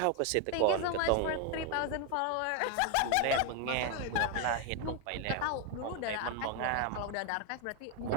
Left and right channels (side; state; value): both; different; correlation 0.01